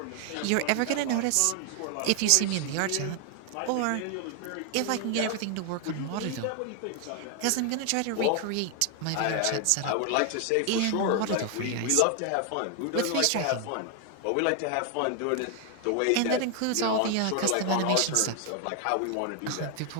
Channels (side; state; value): both; different; correlation 0.00